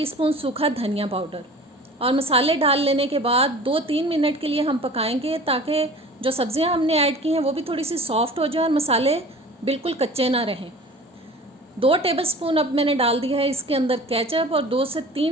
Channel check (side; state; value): both; normal; correlation 0.42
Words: सूखा धनिया पाउडर। और मसाले डाल लेने के बाद 2-3 मिनट के लिए हम पकाएंगे ताकि जो सब्ज़ियां हमने ऐड की हैं वो भी थोड़ी सी सॉफ्ट हो जाए और मसाले बिल्कुल कच्चे ना रहें। 2 टेबलस्पून अब मैंने डाल दिया है इसके अंदर केचप और 2 से